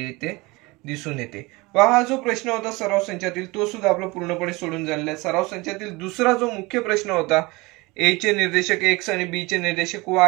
येते दिसून येते. हा जो प्रश्न होता सराव संचातील तो सुद्धा आपला पूर्णपणे सोडून झालेला आहे. सराव संचातील दुसरा जो मुख्य प्रश्न होता ए चे निर्देशक x आणि बी चे निर्देशक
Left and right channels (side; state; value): left; quieter; 23.8 dB